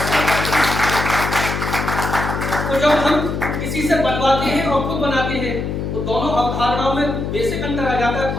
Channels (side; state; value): left; noise; hum, 3 dB below the sound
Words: तो जब हम किसी से बनवाते हैं और खुद बनाते हैं तो दोनों अवधारणाओं में बेसिक अंतर आ जाता है